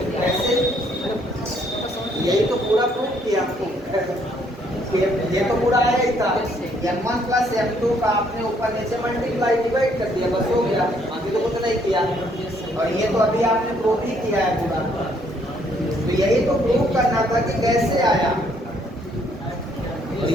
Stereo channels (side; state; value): both; normal; correlation 0.67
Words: कैसे? यही तो पूरा प्रूफ किया आपको। ये तो पूरा आया ही था। M1 प्लस M2 का आपने ऊपर नीचे मल्टीप्लाई डिवाइड कर दिया, बस हो गया, अभी तो कुछ नहीं किया। और ये तो अभी आपने प्रूफ ही किया है पूरा। तो यही तो प्रूफ करना था कि कैसे आया, तो